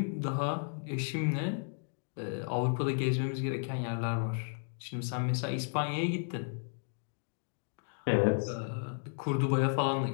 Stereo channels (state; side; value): silent; right; 55 dB below the other